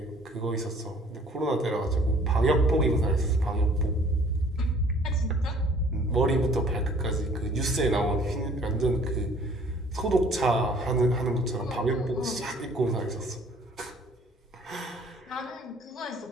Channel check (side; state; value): both; normal; correlation 0.55